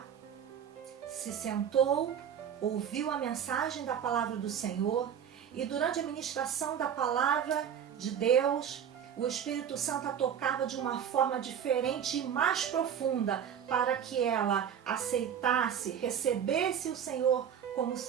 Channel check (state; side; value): quieter; left; 8.6 dB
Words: se sentou, ouviu a mensagem da palavra do Senhor, e durante a ministração da palavra de Deus, o Espírito Santo a tocava de uma forma diferente e mais profunda para que ela aceitasse, recebesse o Senhor como